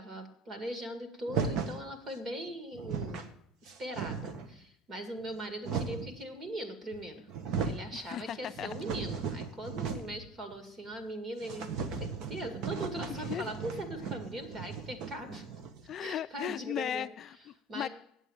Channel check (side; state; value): both; normal; correlation 0.40